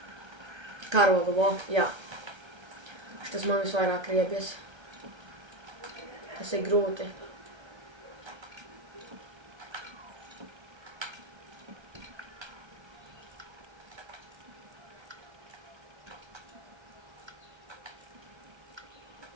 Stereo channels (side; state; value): left; late; 1.3 ms